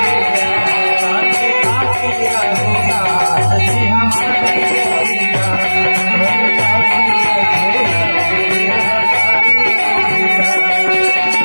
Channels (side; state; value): both; inverted; correlation -1.00